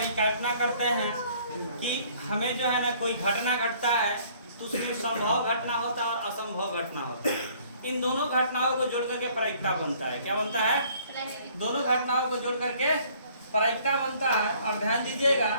करते हैं कि हमें जो है ना कोई घटना घटता है तो उसमें संभव घटना होता है और असंभव घटना होता है। इन दोनों घटनाओं को जोड़ करके परिक्ता बनता है। क्या बनता है? दोनों घटनाओं को जोड़ करके परिक्ता बनता है। और ध्यान दीजिएगा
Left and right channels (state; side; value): inverted; both; correlation -0.58